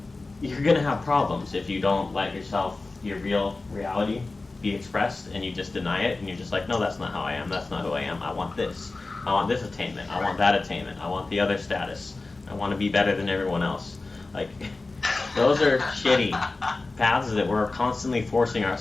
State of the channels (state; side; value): quieter; right; 3.4 dB